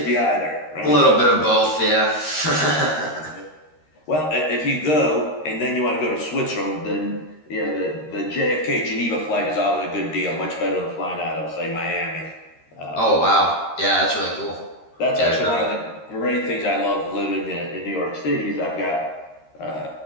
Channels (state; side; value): late; right; 13 ms